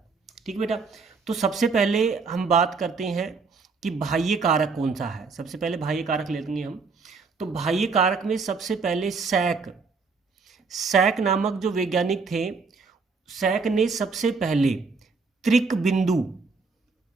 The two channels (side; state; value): left; quieter; 4.6 dB